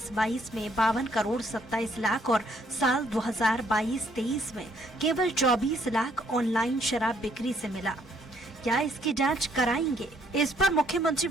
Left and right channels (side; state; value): both; normal; correlation 0.68